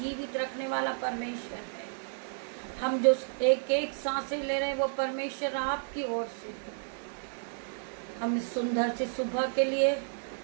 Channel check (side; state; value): left; silent; digital silence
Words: रखने वाला परमेश्वर है। हम जो एक एक सांसें ले रहे हैं वो परमेश्वर आपकी ओर से है। हम इस सुंदर से सुबह के लिए